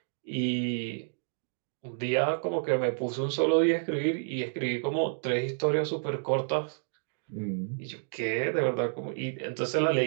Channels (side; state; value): left; silent; digital silence